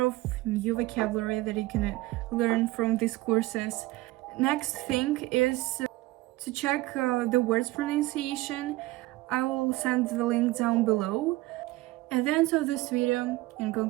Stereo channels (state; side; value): quieter; left; 19.4 dB